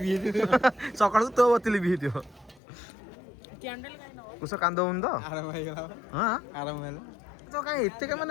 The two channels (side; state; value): right; drops out; at 2.6 s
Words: ହେଇଯିବ ସକାଳୁ ତୋ ବତି ଲିଭି ହେଇଥିବ। କୁଶ କାନ୍ଦ ହଉନି ତ? ଆରାମ ହେଇଗଲା ହଁ ଆରାମ ହେଲା ତ କାଇଁ ଏତେ